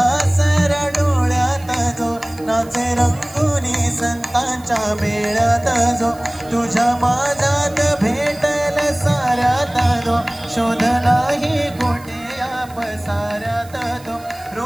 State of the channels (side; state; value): right; noise; hiss, 23 dB below the sound